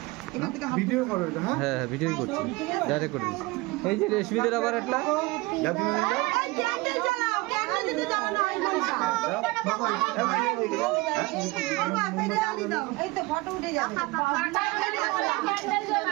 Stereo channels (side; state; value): left; quieter; 22.8 dB